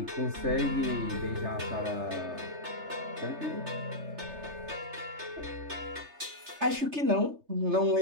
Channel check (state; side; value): late; left; 3.3 ms